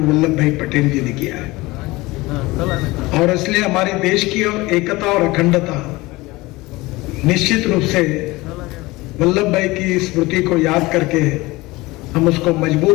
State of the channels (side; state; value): right; quieter; 21.1 dB